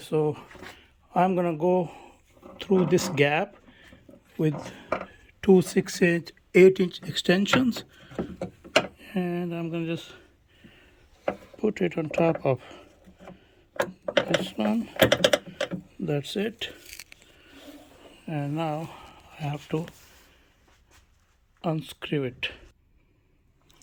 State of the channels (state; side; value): identical; both; correlation 1.00